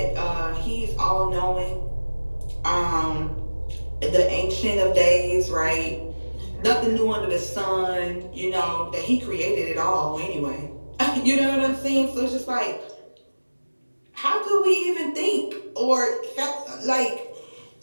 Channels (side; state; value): both; inverted; correlation -1.00